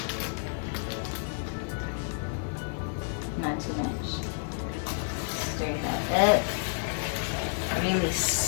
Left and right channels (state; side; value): silent; right; 58 dB below the other